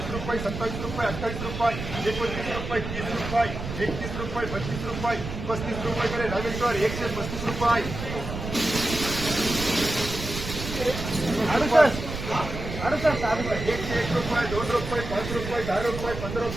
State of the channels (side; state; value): right; noise; rumble, 7 dB below the sound